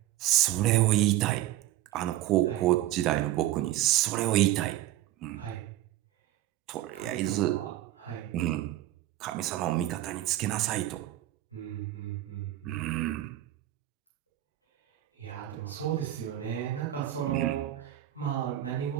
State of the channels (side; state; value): left; quieter; 14.1 dB